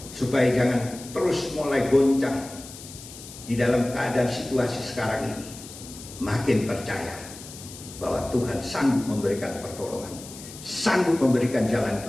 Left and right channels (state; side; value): noise; left; hiss, 15 dB below the sound